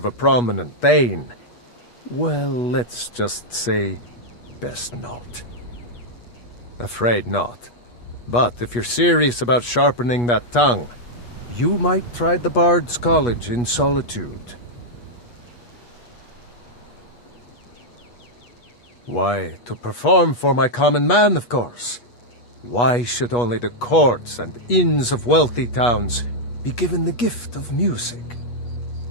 a prominent Thane, well, let's just say, best not. Afraid not. But if you're serious about sharpening that tongue, you might try the Bard's College in Solitude. Why, to perform for my common man, of course. Why should only the courts and inns of wealthy towns be given the gift of music?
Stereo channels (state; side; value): late; right; 8.3 ms